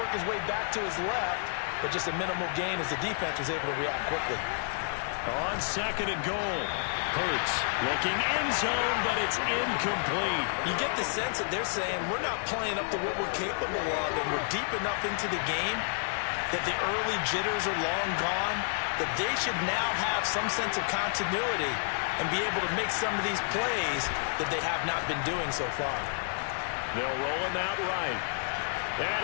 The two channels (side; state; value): right; silent; digital silence